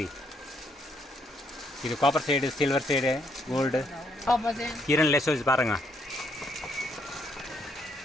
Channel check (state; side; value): normal; both; correlation 0.73